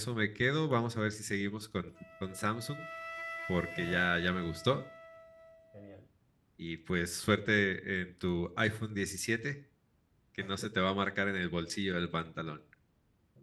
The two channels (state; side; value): identical; both; correlation 1.00